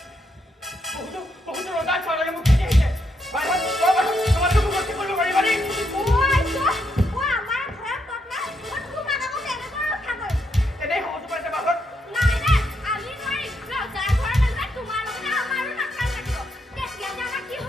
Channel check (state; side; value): normal; both; correlation 0.78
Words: বহুতো ৰজাৰ ছোৱালীয়ে মোক খেদি আহিছে তোমালোকে মোক ৰক্ষা কৰিব পাৰিবানে আমাৰ ঘৰত পত্না তোমাক আকৌ কেনেকৈ ৰক্ষা কৰিম এনেই সহজ পাইছে বাহত নাই আমি নোৱাৰিম ৰজাৰ ঘৰৰ মাজত তোমাৰ লগতে আমাৰো নাখাল লাগিব তেতিয়া যে আমাৰ কি